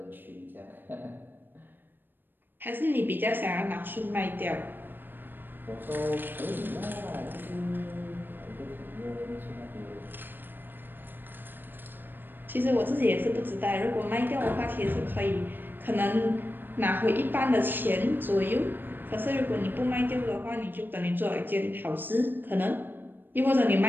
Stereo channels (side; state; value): left; late; 0.094 ms